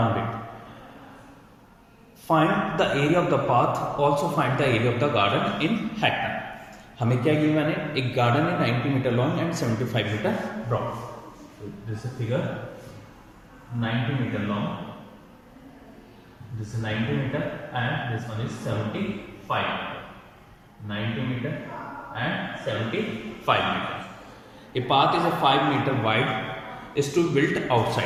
it. Find the area of the path, also find the area of the garden in hectare. हमें क्या given है, एक garden है 90 metre long and 75 metre broad. This is figure 90 metre long, this is 90 metre and this one is 75 90 metre and 75 metre. A path is a 5 metre wide is to built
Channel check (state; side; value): identical; both; correlation 1.00